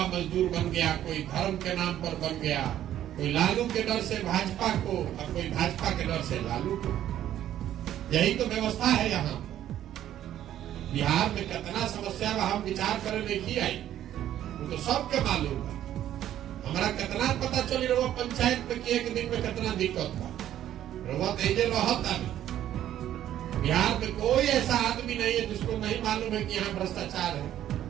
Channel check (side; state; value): left; quieter; 11.8 dB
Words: मजदूर बन गया, कोई धर्म के नाम पर बन गया, कोई लालू के डर से भाजपा को और कोई भाजपा के डर से लालू को। यही तो व्यवस्था है यहाँ। बिहार में कितना समस्या हम विचार करे नहीं आई, वो तो सबके मालूम है। हमारा कितना पता चली रहा पंचायत में कि एक दिन में कितना दिक्कत था, बिहार में कोई ऐसा आदमी नहीं है जिसको नहीं मालूम है कि यहाँ भ्रष्टाचार है।